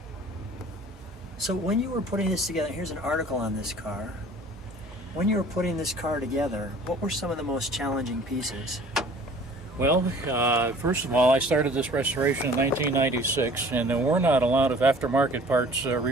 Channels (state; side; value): normal; both; correlation 0.49